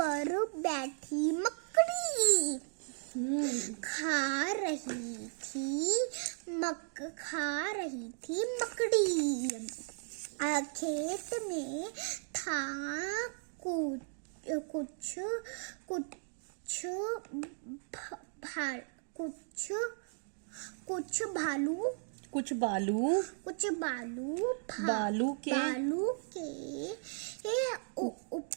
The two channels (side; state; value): left; silent; 54 dB below the other